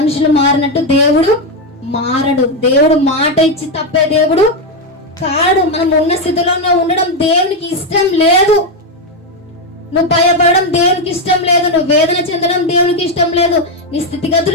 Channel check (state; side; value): normal; both; correlation 0.06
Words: మారినట్టు దేవుడు మారడు. దేవుడు మాట ఇచ్చి తప్పే దేవుడు కాడు. మనం ఉన్న స్థితిలోనే ఉండడం దేవునికి ఇష్టం లేదు. నువ్వు భయపడడం దేవునికి ఇష్టం లేదు. నువ్వు వేదన చెందడం దేవునికి ఇష్టం లేదు. నీ